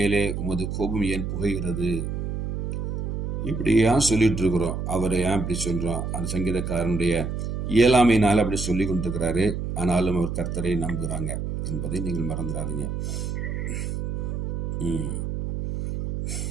உமது கோபம் ஏன் புகைகிறது. இப்படி ஏன் சொல்லிட்டு இருக்கிறோம், அவரை ஏன் இப்படி சொல்கிறோம்? அந்த சங்கீதக்காரனுடைய இயலாமையினால் அப்படி சொல்லி கொண்டிருக்கிறாரு. ஆனாலும் அவர் கர்த்தரை நம்புகிறாங்க என்பதை நீங்கள் மறந்துடாதீங்க.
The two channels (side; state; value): right; noise; hum, 3 dB below the sound